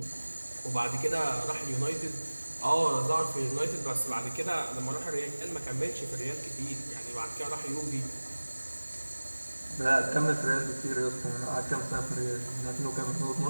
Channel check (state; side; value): inverted; both; correlation -1.00